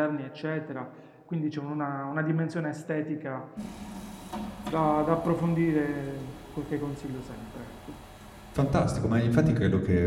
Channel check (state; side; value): identical; both; correlation 1.00